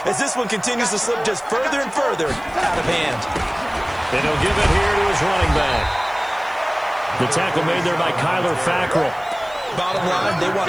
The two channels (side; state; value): right; noise; hiss, 28 dB below the sound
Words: as this one continues to slip just further and further out of hand. And he'll give it here to his running back. The tackle made there by Kyler Fackrell. Bottom line, they